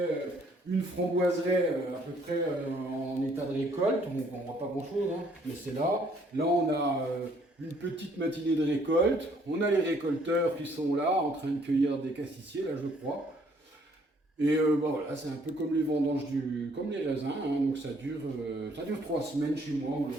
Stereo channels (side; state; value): both; normal; correlation 0.63